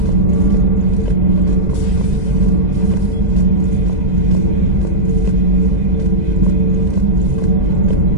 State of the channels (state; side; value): late; left; 2.0 ms